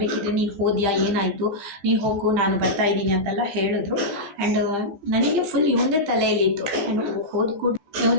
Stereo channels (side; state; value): left; late; 14 ms